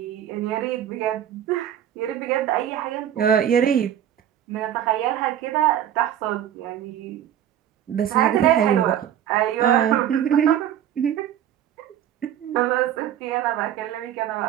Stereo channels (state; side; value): quieter; left; 10.5 dB